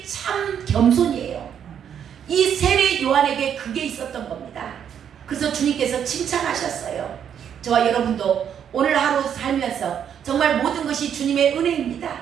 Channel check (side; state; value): left; quieter; 8.7 dB